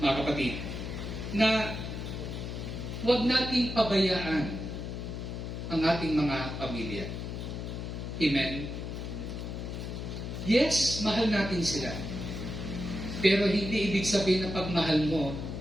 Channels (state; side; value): noise; left; hum, 6 dB below the sound